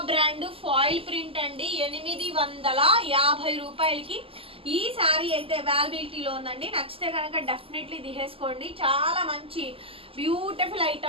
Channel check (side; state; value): left; late; 0.27 ms